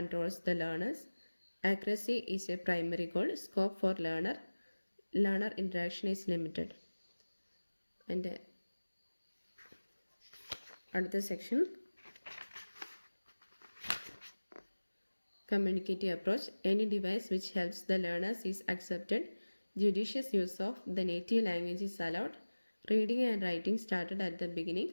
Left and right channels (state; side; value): inverted; both; correlation -1.00